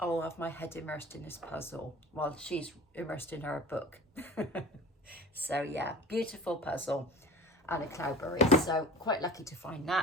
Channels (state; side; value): normal; both; correlation 0.38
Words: have my head immersed in this puzzle while she's immersed in her book. So yeah, beautiful puzzle and a Cloudberry. So quite lucky to find